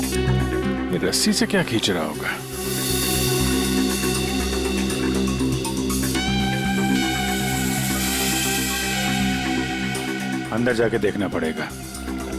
ये रस्सी से क्या खींच रहा होगा? अंदर जाके देखना पड़ेगा।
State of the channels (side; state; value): both; identical; correlation 1.00